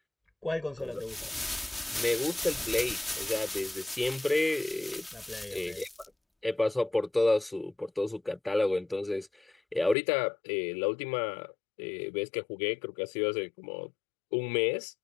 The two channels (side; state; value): right; drops out; at 10.0 s